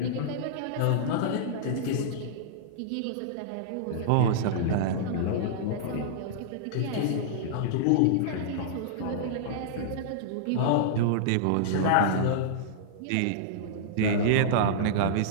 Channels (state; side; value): different; both; correlation -0.02